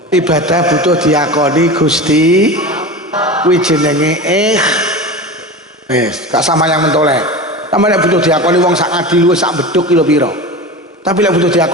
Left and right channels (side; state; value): both; normal; correlation 0.29